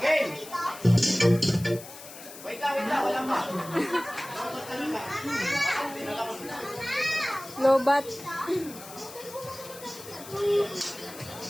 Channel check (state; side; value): noise; left; hiss, 15 dB below the sound